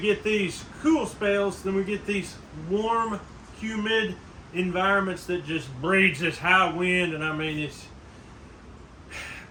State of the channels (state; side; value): identical; both; correlation 1.00